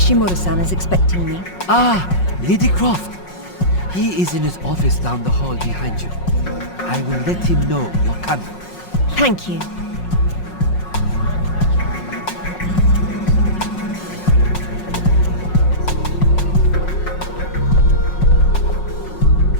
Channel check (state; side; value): late; right; 5.5 ms